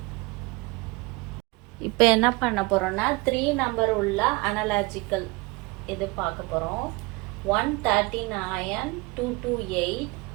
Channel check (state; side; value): quieter; left; 25.1 dB